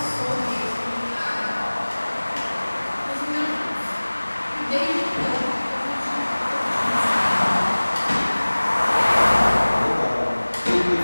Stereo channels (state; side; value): inverted; both; correlation -1.00